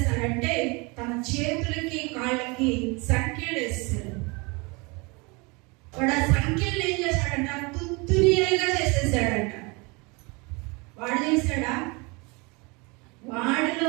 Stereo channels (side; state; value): left; quieter; 28.2 dB